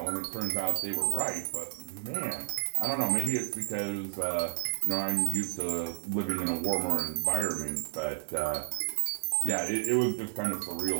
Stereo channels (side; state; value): left; silent; digital silence